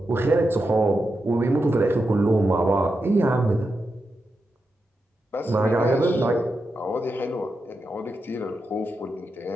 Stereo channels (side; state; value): both; normal; correlation 0.87